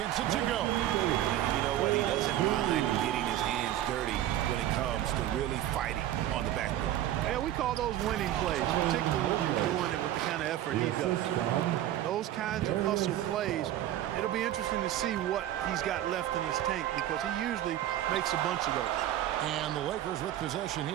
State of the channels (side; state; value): left; quieter; 12.7 dB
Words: it to go. You know what? He doesn't mind getting his hands dirty when it comes to really fighting on the backboard. Yeah, we call those winning plays, particularly when you're doing it with the kind of effort he does. Those kinds of hustle plays, it'll be interesting to see what he's got left in his tank because he usually makes a bunch of those. And the Lakers with possession